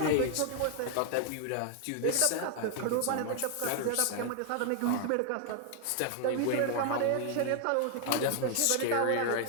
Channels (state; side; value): different; both; correlation 0.00